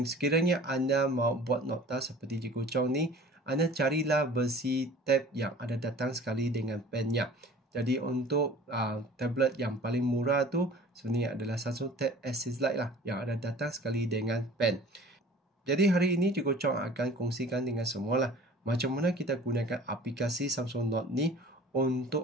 sekiranya anda mau buat nota seperti Cikgu Chong ni, anda carilah versi tab yang ada datang sekali dengan pennya. Jadi untuk tablet yang paling murah tu sebenarnya adalah Samsung Tab Access Lite lah yang ada datang sekali dengan pen. Jadi hari ini Cikgu Chong akan kongsikan dengan semua lah macam mana kita gunakan aplikasi Samsung Note ni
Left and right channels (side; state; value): both; normal; correlation 0.46